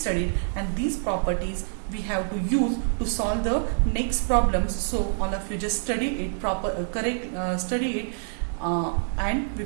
and these properties we have to use to solve the next problems. So all of you just study it study it and we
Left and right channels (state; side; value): silent; left; digital silence